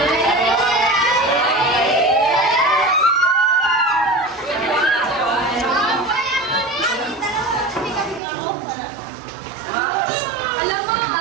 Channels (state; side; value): drops out; left; at 8.2 s